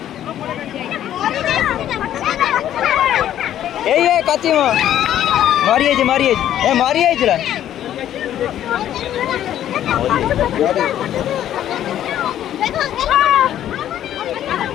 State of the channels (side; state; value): right; quieter; 11.4 dB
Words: ये काची में मारिए ए मारिए जरा